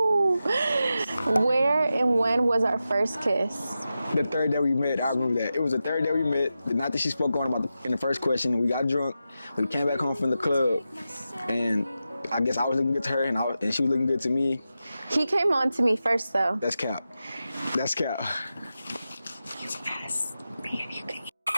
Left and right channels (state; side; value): inverted; both; correlation -0.91